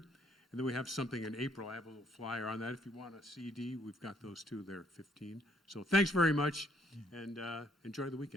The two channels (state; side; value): normal; both; correlation 0.67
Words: then we have something in April. I have a little flyer on that. If you want a CD, we've got those too. They're 15. So thanks very much, and enjoy the